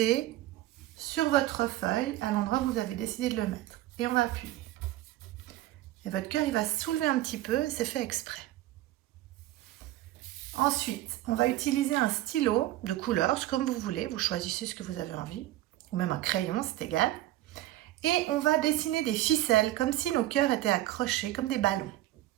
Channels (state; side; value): quieter; left; 15.1 dB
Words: sur votre feuille à l'endroit où vous avez décidé de le mettre. Et on va appuyer. Et votre cœur il va se soulever un petit peu, c'est fait exprès. Ensuite, on va utiliser un stylo de couleur, comme vous voulez, vous choisissez ce que vous avez envie, ou même un crayon, c'est égal. Et on va dessiner des ficelles, comme si nos cœurs étaient accrochés, comme des ballons,